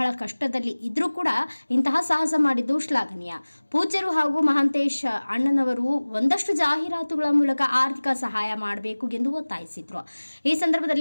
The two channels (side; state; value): both; inverted; correlation -1.00